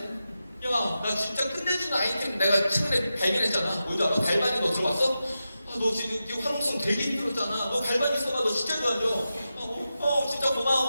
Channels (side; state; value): both; inverted; correlation -0.91